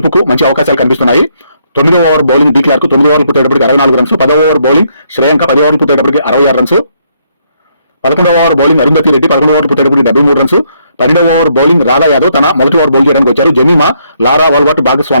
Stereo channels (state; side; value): inverted; both; correlation -0.73